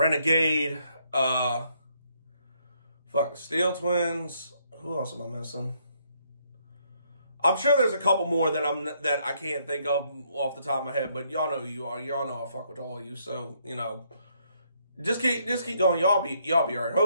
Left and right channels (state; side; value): inverted; both; correlation -0.71